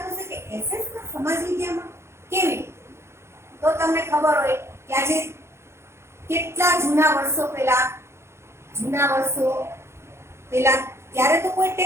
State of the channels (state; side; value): late; left; 0.13 ms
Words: છે કે એસએસ માં સમાજ વિદ્યામાં કેવી? તો તમને ખબર હોય કે આજે કેટલા જૂના વર્ષો પહેલા ત્યારે તો કોઈ